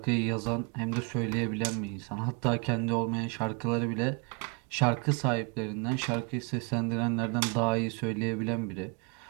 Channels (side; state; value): left; quieter; 33.4 dB